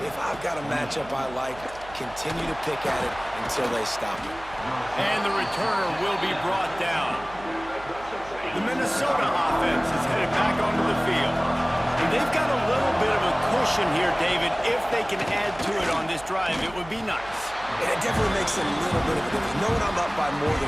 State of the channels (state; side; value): noise; right; hum, 19 dB below the sound